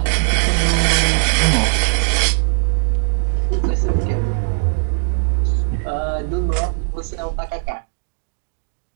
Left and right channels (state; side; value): silent; left; digital silence